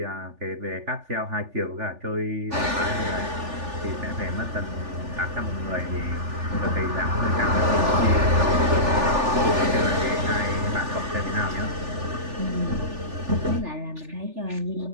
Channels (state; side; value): late; left; 3.4 ms